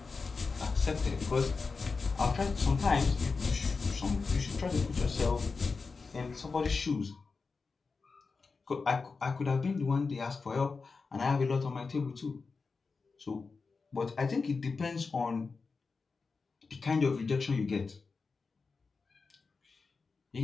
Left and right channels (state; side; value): quieter; right; 4.5 dB